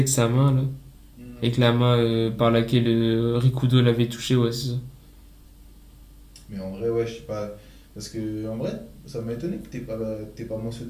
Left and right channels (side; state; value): both; identical; correlation 1.00